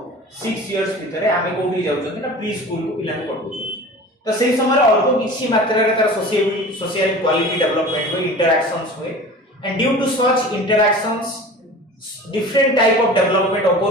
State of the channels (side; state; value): both; normal; correlation 0.38